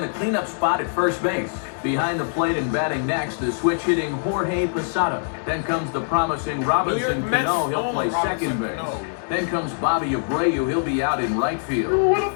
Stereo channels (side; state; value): right; silent; digital silence